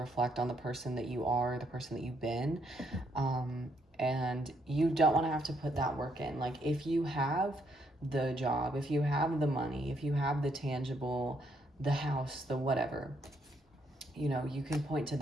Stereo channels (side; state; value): both; normal; correlation 0.73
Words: on the person that you are, the person that you've been, and you don't want to have to put that work in. Like, if you have the job, if you have the money, if you have the tangible, the house, the whatever, you can point to